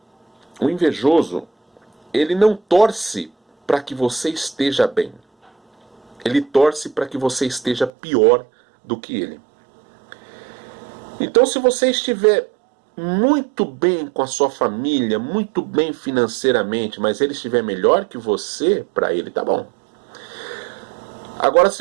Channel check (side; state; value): left; drops out; at 7.9 s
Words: ele não torce para que você esteja bem. Ele torce para que você esteja pior do que ele. Então, se você estiver muito bem com a sua família, muito bem financeiramente, mas ele estiver melhor que você, para ele tá bom. Agora, se